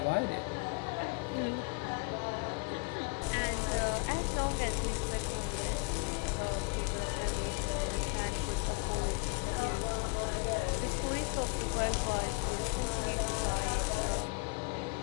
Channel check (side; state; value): right; quieter; 31.7 dB